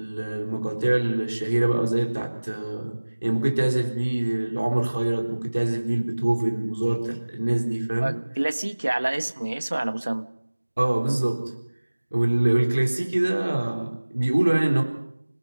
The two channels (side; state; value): both; inverted; correlation -1.00